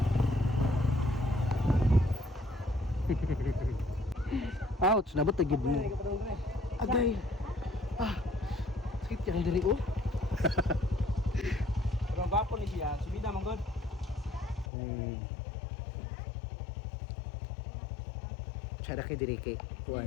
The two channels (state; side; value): drops out; right; at 14.7 s